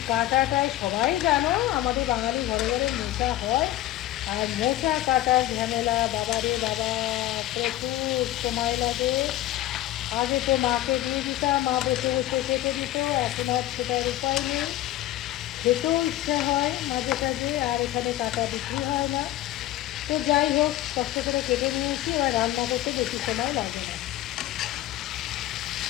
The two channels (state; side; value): quieter; right; 14.8 dB